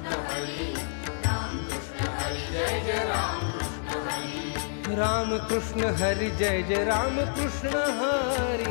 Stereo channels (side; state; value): right; silent; digital silence